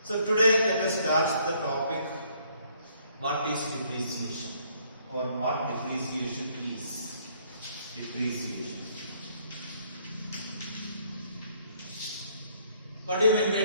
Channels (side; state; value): both; inverted; correlation -0.66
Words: So today let us start the topic, what is depreciation or what depreciation is. Depreciation. What do you mean by